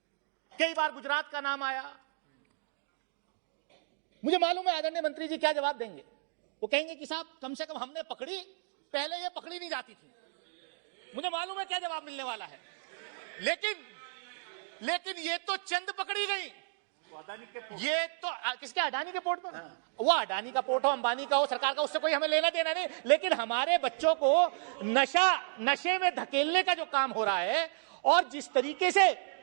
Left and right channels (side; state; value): left; silent; digital silence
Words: कई बार गुजरात का नाम आया। मुझे मालूम है आदरणीय मंत्री जी क्या जवाब देंगे। वो कहेंगे कि साहब कम से कम हमने पकड़ी, पहले ये पकड़ी नहीं जाती थी। मुझे मालूम है क्या जवाब मिलने वाला है, लेकिन ये तो चंद पकड़ी गई। ये तो किसके, अडानी के पोर्ट पर? वो अडानी का पोर्ट हो, अंबानी का हो, सरकार का, उससे कोई हमें लेना देना नहीं। लेकिन हमारे बच्चों को नशे में धकेलने का जो काम हो रहा है, और जिस तरीके से